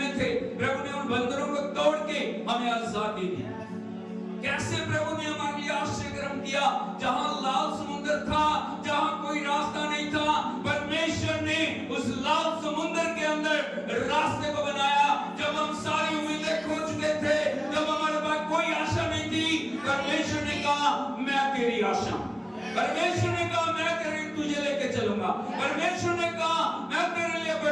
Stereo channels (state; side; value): identical; both; correlation 1.00